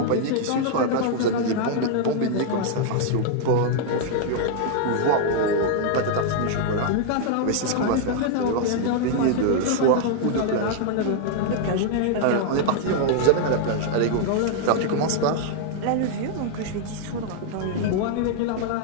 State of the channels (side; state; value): both; different; correlation 0.00